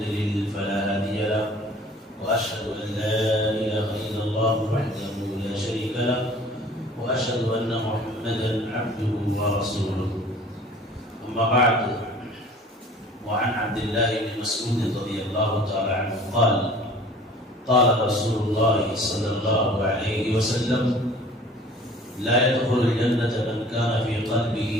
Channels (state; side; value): normal; both; correlation 0.48